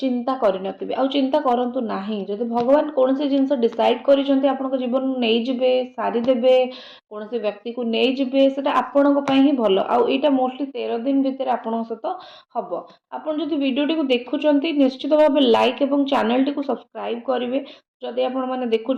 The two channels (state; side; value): identical; both; correlation 1.00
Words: करनथिबे आ चिंता करंतु नाही जदि भगवान कौन सी जिनस डिसाइड करिसेंती आपणक जीवन नहीं जिबे सारी देबे कौन से व्यक्ति को नहीं जिबे सेटा आपणक पई ही भलो आ एटा मोस्टली 13 दिन भितर आपणक सहित हबो आपण जदि वीडियो टी को देखुचंती निश्चित भाव लाइक एवं चैनल टी को सब्सक्राइब करिवे जदि आपण माने